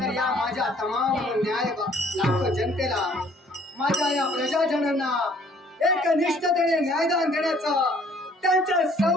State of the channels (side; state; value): both; normal; correlation 0.59